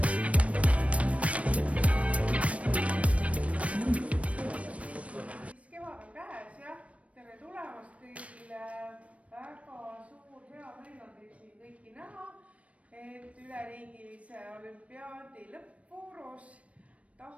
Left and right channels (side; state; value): left; late; 0.064 ms